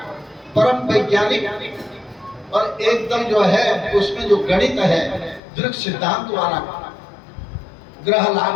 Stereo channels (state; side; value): drops out; right; at 5.4 s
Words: परम वैज्ञानिक और एकदम जो है उसमें जो गणित है दृढ़ सिद्धांत वाला, ग्रह